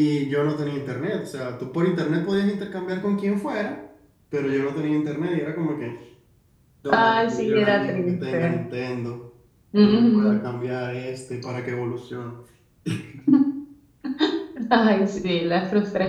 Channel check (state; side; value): identical; both; correlation 1.00